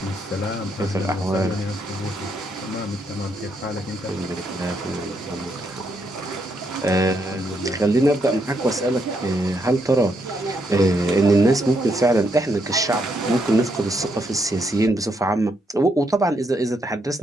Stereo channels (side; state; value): both; normal; correlation 0.77